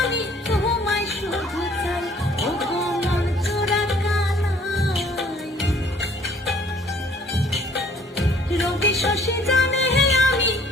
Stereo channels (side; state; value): both; normal; correlation 0.58